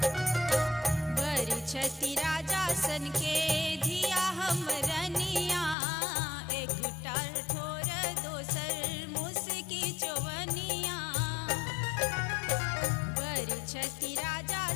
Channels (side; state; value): right; drops out; at 5.8 s